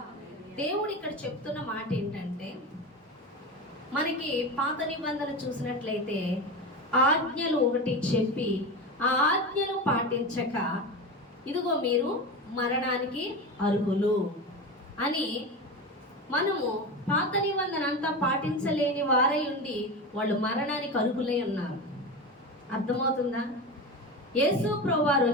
దేవుడు ఇక్కడ చెప్తున్న మాట ఏంటంటే, మనకి పాత నిబంధన చూసినట్లయితే ఆజ్ఞలు ఒకటి చెప్పి ఆ ఆజ్ఞలు పాటించక ఇదిగో మీరు మరణానికి అర్హులు అని, మనము పాత నిబంధన అంతా పాటించలేని వారై ఉండి వాళ్ళు మరణానికి అర్హులై ఉన్నారు. అర్థమవుతుందా? యేసు ప్రభువారు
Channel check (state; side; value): normal; both; correlation 0.23